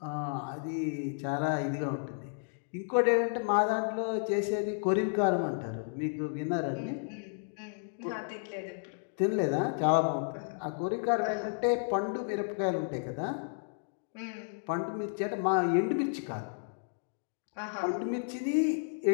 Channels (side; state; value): right; silent; digital silence